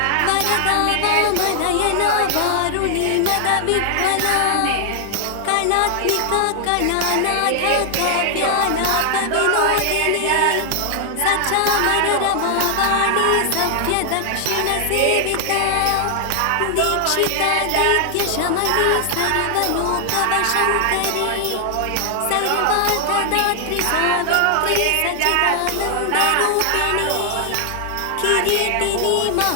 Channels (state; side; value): different; both; correlation 0.00